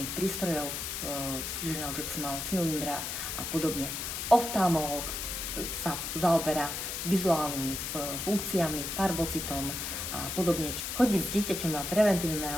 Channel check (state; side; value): noise; left; hiss, 4 dB below the sound